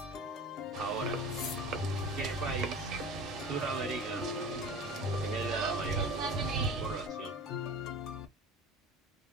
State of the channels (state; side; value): normal; both; correlation 0.36